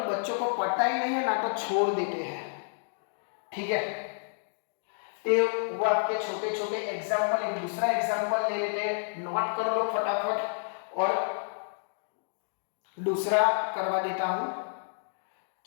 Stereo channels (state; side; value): silent; right; digital silence